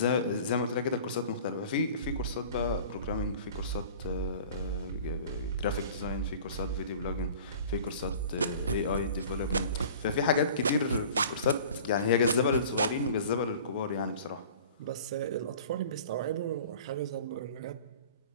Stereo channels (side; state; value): both; inverted; correlation -0.43